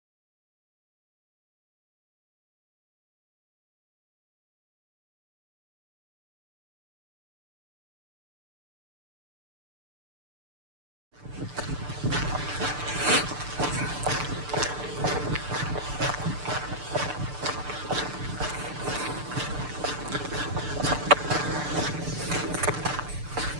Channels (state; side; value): late; left; 6.8 ms